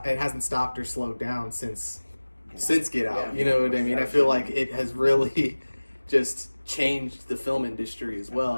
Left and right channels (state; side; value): inverted; both; correlation -1.00